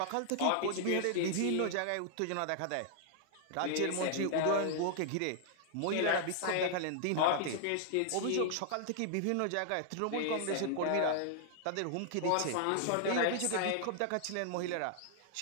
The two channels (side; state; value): both; different; correlation 0.00